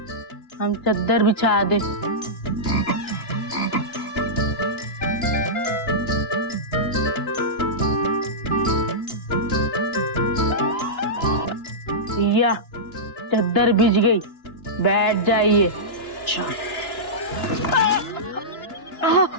हम चद्दर बिछा दे। भैया चद्दर बिछ गई, बैठ जाइए। अच्छा।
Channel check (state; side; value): late; right; 2.9 ms